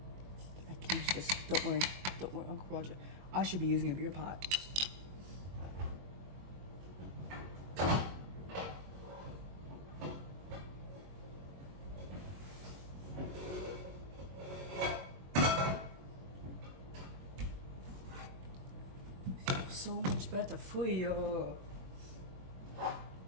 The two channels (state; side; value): late; left; 22 ms